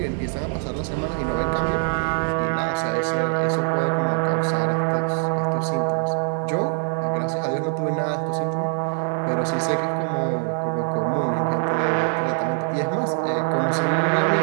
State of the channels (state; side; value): silent; left; 63 dB below the other